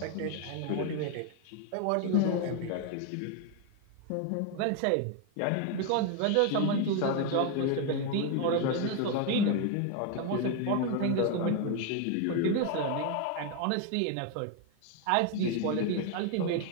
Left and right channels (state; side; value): different; both; correlation 0.01